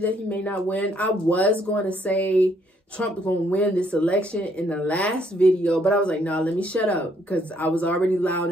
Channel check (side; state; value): both; normal; correlation 0.69